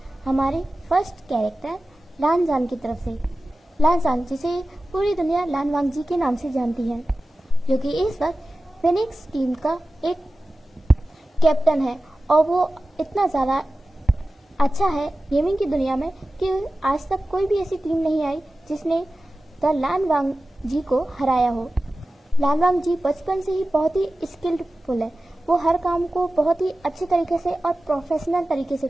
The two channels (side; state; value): both; normal; correlation 0.95